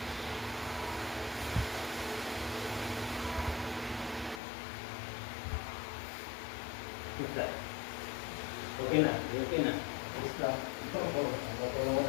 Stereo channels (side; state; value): right; drops out; at 4.4 s